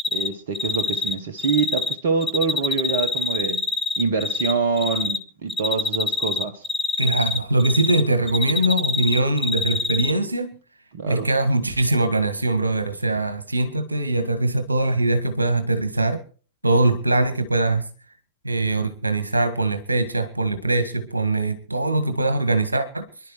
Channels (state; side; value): inverted; both; correlation -0.51